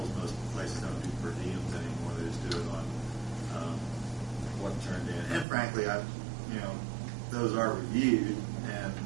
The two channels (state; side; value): drops out; left; at 5.5 s